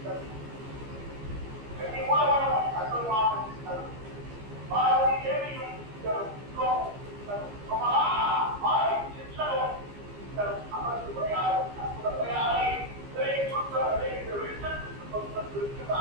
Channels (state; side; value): late; left; 15 ms